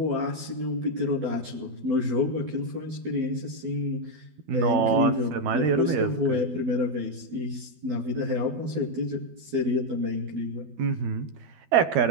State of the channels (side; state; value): left; late; 12 ms